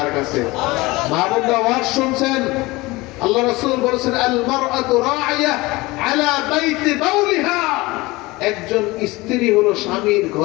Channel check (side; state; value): right; quieter; 21.6 dB